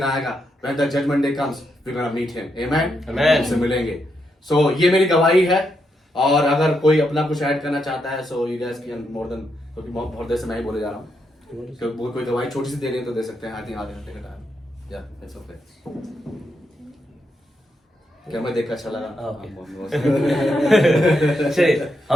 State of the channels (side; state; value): both; normal; correlation 0.81